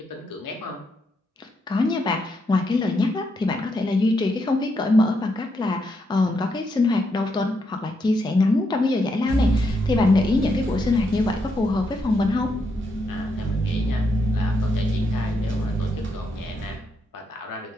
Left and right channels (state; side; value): normal; both; correlation 0.80